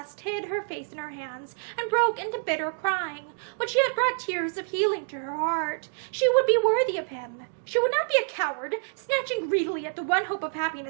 hid her face in her hands and broke into bitter crying, which yet brought tears of healing to her heart. She would be worthy of him. She would not be a coward, snatching greedily at the one hope of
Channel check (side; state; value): left; silent; digital silence